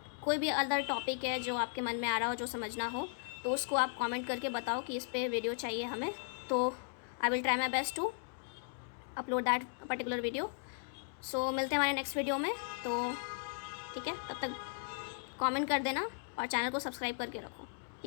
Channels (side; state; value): right; silent; digital silence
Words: कोई भी अदर टॉपिक है जो आपके मन में आ रहा हो, जो समझना हो, तो उसको आप कमेंट करके बताओ कि इस पे वीडियो चाहिए हमें, तो I will try my best to upload that particular video. So मिलते हैं हमारे नेक्स्ट वीडियो में। तो ठीक है, तब तक कमेंट कर देना और चैनल को सब्सक्राइब करके रखो।